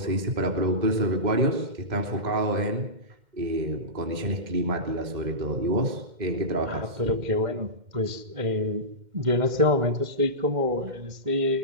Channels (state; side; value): late; left; 2.1 ms